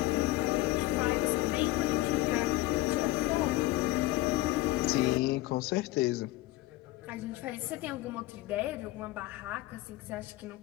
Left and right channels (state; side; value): quieter; right; 17.7 dB